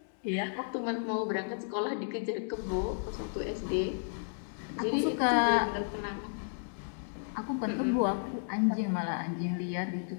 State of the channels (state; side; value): silent; right; 56 dB below the other